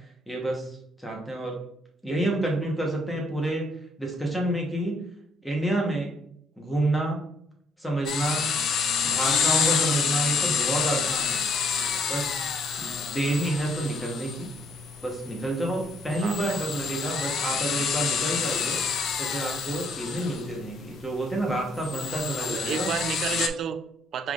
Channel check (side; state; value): both; normal; correlation 0.68